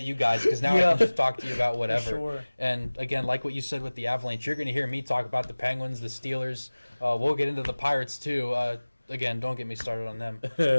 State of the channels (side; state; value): both; inverted; correlation -1.00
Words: you guys, because now I can just talk to you about whatever. Sure. And again, like what you said with the Avalanche, you're going to hear me talk about the Penguins, the Steelers. We'll get into the Pirates too. Again, don't get me started on them. But